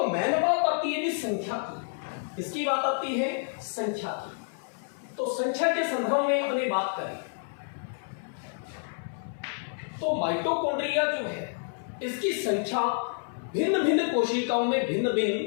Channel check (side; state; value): right; silent; 59 dB below the other